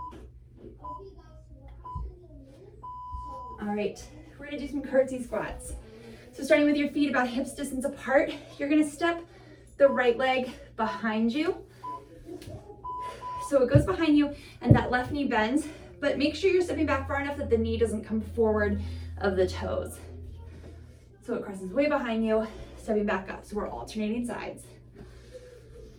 All right, we're gonna do some curtsy squats. So starting with your feet about hips distance apart, you're gonna step the right leg behind you. So it goes behind you and that left knee bends, but make sure you're stepping back far enough that the knee doesn't come forward of the toes. So it crosses way behind you, stepping back up. So we're alternating sides.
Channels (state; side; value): identical; both; correlation 1.00